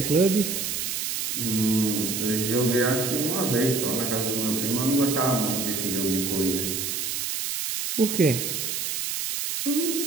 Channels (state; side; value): noise; right; hiss, 2 dB below the sound